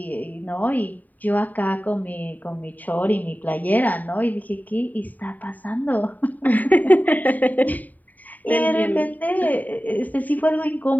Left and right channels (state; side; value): late; right; 0.081 ms